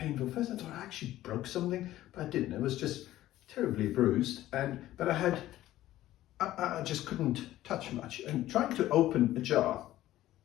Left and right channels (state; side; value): quieter; right; 14.6 dB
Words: First I thought I actually broke something, but I didn't. It was just terribly bruised, but I just couldn't touch much. And trying to open a jar,